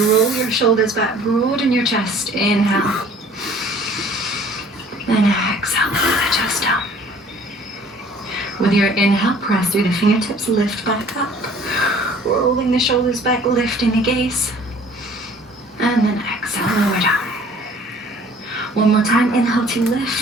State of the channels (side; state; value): both; normal; correlation 0.53